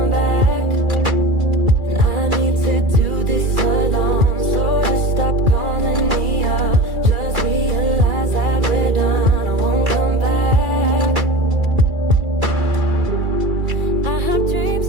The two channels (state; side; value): late; left; 2.3 ms